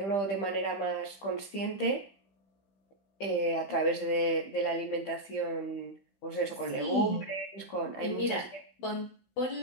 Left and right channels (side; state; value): right; late; 15 ms